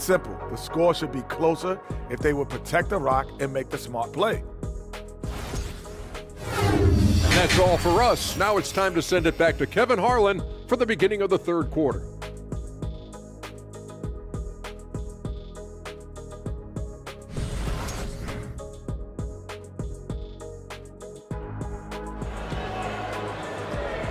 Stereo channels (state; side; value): identical; both; correlation 1.00